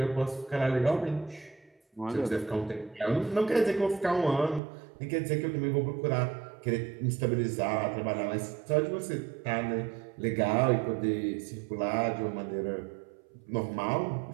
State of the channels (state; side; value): drops out; left; at 4.6 s